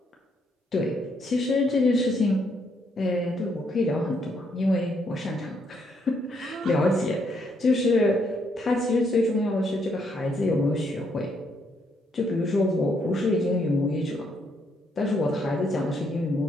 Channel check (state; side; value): normal; both; correlation 0.73